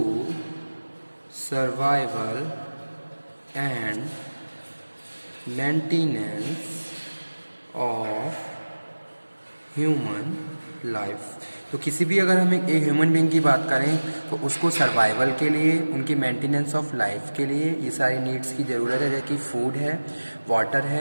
survival and maintenance of human life. तो किसी भी अगर हम एक human being की बात करें तो उसको सर्वाइवल के लिए, उनकी मेंटेनेंस ऑफ लाइफ के लिए ये सारी नीड्स की ज़रूरत है, जैसे कि फूड है, वाटर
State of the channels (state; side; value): inverted; both; correlation -1.00